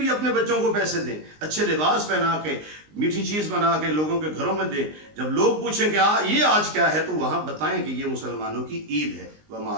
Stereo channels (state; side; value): late; left; 19 ms